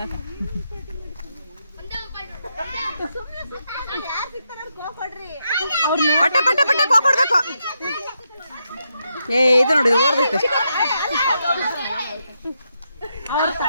ಪಟ್ಟ ಪಟ್ಟ ಪಟ್ಟ ಕೊಡ್ಬೇಕು. ಏ ಇದು ನೋಡಿ ಓಡ್ಬೇಕು.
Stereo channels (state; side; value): inverted; both; correlation -0.82